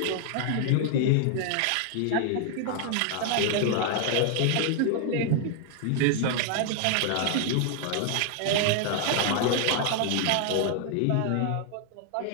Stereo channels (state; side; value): different; both; correlation 0.00